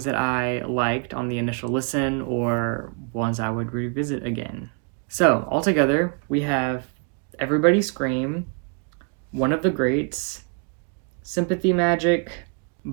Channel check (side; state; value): left; quieter; 40.0 dB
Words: that I liked on the initial listen or ones I would revisit again? So, altogether, we have Everybody Scream, One of the Greats, Sympathy Magic,